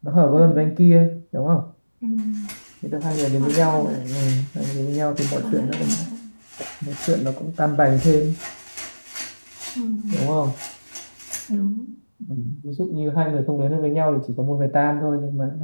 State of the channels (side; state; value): both; inverted; correlation -1.00